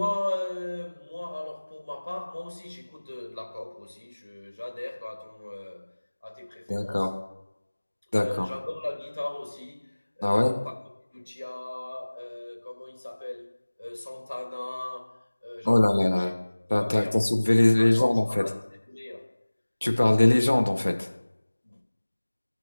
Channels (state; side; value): inverted; both; correlation -1.00